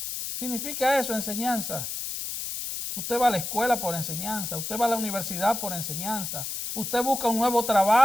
Significa eso, enseñanza. Usted va a la escuela por enseñanza, usted va a la universidad por enseñanza. Usted busca un nuevo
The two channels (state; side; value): noise; left; hiss, 5 dB below the sound